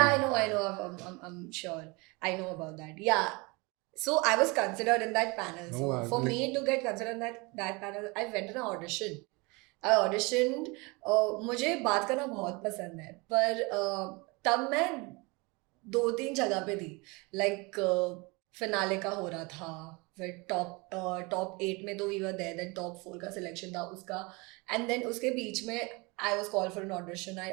I know. I'm sure. I know about that. Yeah. So I was considered in that panel. No, So for me to get considered in that panel, I went on an audition. I auditioned. मुझे बात करना बहुत पसंद है, पर तब मैं 2-3 जगह पे थी. Like फिनाले का हो रहा था, फिर टॉप 8 में तो we were there, then top 4 का सिलेक्शन था उसका, एंड देन उसके बीच में I was called for an audition.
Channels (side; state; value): left; quieter; 26.9 dB